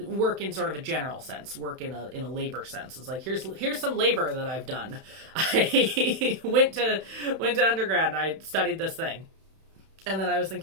in sort of a general sense, work in a labor sense. It's like, here's some labor that I've done. I went to undergrad and I studied this thing. And then I was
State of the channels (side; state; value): left; late; 31 ms